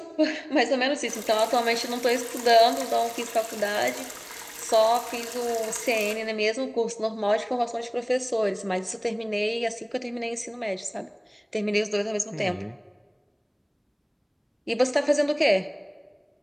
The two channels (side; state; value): both; identical; correlation 1.00